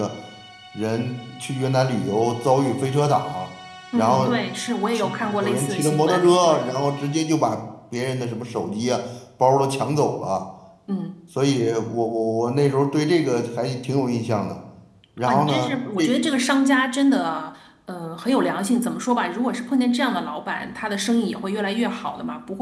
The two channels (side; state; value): both; identical; correlation 1.00